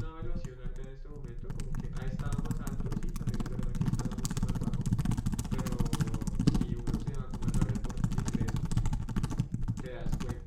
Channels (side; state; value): both; identical; correlation 1.00